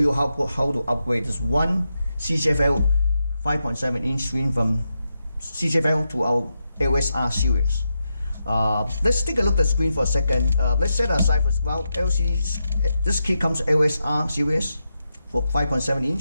how to upgrade this one CCFL 5.7 inch screen from CCFL to our ASST series. Let's take a look at the screen for a second. Let's set aside for well, this kit comes ASST series for 5.7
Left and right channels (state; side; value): inverted; both; correlation -0.86